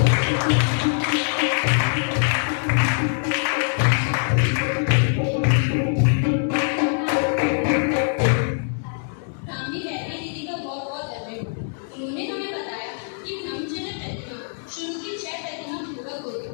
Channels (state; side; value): silent; right; 61 dB below the other